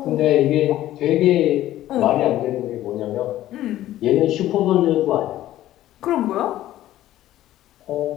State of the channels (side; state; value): right; quieter; 13.9 dB